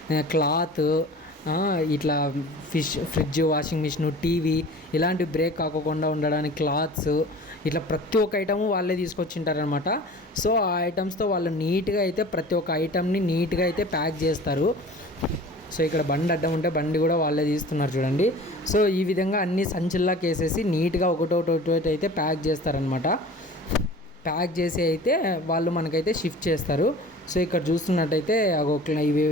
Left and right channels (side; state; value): both; normal; correlation 0.42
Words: క్లాత్, ఇట్లా ఫ్రిడ్జ్, వాషింగ్ మిషన్, టీవీ ఇలాంటి బ్రేక్ కాకుండా ఉండడానికి క్లాత్స్, ఇట్లా ప్రతి ఒక్క ఐటము వాళ్ళే తీసుకొచ్చింటారనమాట. సో ఆ ఐటమ్స్తో వాళ్ళు నీట్గా అయితే ప్రతి ఒక్క ఐటమ్ని నీట్గా అయితే ప్యాక్ చేస్తారు. సో ఇక్కడ బండి అడ్డం ఉంటే బండి కూడా వాళ్ళే తీస్తున్నారు చూడండి. సో ఈ విధంగా అన్ని సంచుల్లాకి వేసేసి నీట్గా ఒకటొకటి అయితే ప్యాక్ చేస్తారనమాట. ప్యాక్ చేసి అయితే వాళ్ళు మనకైతే షిఫ్ట్ చేస్తారు. సో ఇక్కడ చూస్తున్నట్టయితే ఇవి